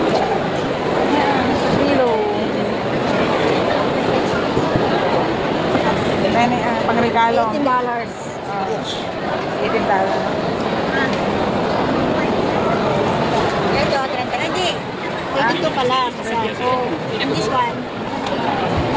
Pangregalo. $18. $18. Ito, 30. Hindi. 32 pala. And this one?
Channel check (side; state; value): both; identical; correlation 1.00